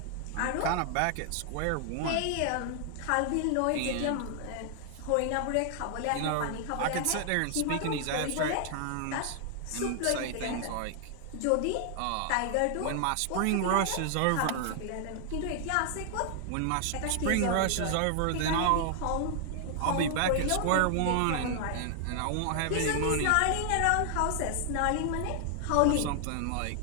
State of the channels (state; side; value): different; both; correlation 0.00